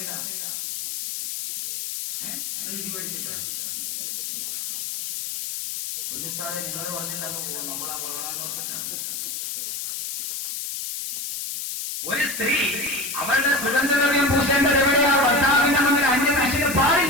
ഇടി പഠിച്ചിട്ടാണ് കുഞ്ഞുസ്ഥാനെ നിങ്ങൾ പറഞ്ഞിട്ടാണ് പോകും. നമ്മളാ വളരാൻ ഒരു സ്ത്രീ അവളുടെ സുഗന്ധദ്രവ്യം പൂശേണ്ടത് എവിടെയാ? ഭർത്താവിന്റെ മുന്നിൽ അന്യനാശിന്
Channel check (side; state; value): left; noise; hiss, 5 dB below the sound